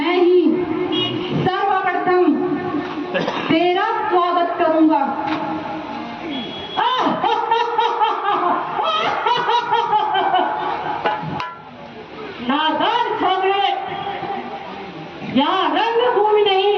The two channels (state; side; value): identical; both; correlation 1.00